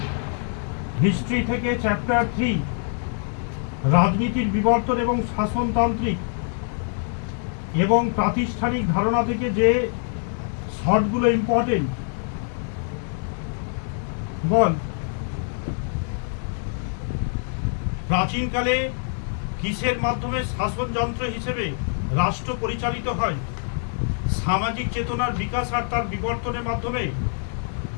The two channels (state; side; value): silent; right; 57 dB below the other